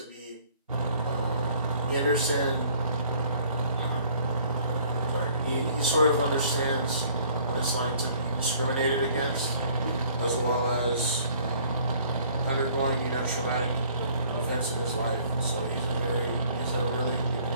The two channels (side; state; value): both; inverted; correlation -0.57